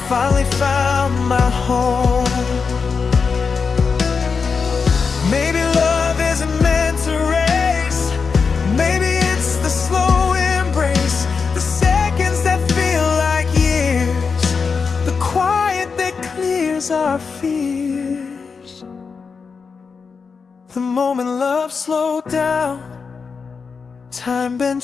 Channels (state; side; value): quieter; right; 5.3 dB